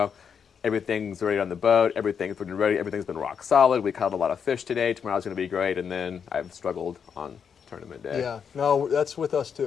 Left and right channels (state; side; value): quieter; right; 7.0 dB